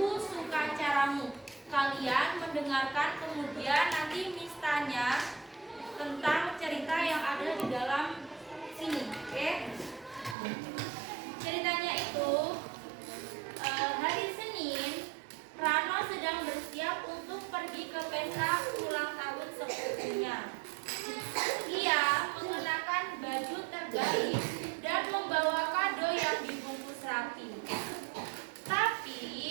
Suka Caramu. Kalian mendengarkan, kemudian nanti Miss tanya tentang cerita yang ada di dalam sini. Oke? Ceritanya itu hari Senin, Rano sedang bersiap untuk pergi ke pesta ulang tahun sepupunya. Ia mengenakan baju terbaik dan membawa kado yang dibungkus rapi. Tapi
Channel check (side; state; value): left; drops out; at 10.4 s